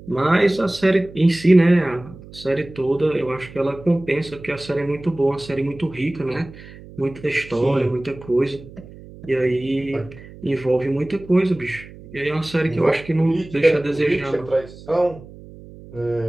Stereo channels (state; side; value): noise; right; hum, 18 dB below the sound